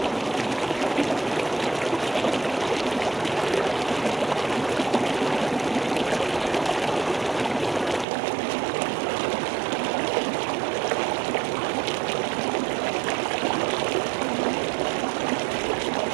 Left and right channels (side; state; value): left; drops out; at 8.1 s